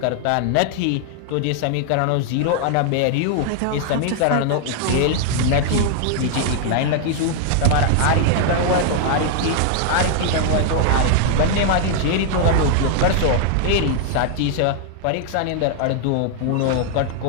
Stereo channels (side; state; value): both; different; correlation 0.00